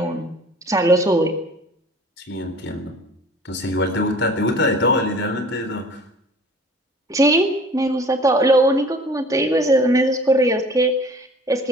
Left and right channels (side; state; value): both; normal; correlation 0.47